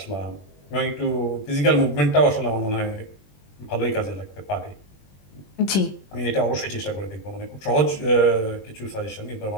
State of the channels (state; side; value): late; right; 21 ms